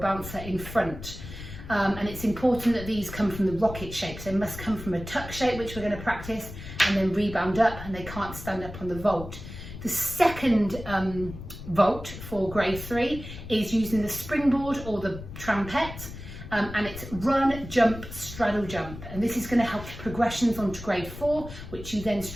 in front. And it's important that these come from the rocket shapes. They must come from a tuck shape, which we're going to practice, and then rebound up, and they can't stand up on the vault. The second vault for grade 3 is using the springboard or the trampette, and it's run, jump, straddle, jump. And this is going to help progressions onto grade 4, which you then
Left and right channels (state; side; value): noise; left; rumble, 12 dB below the sound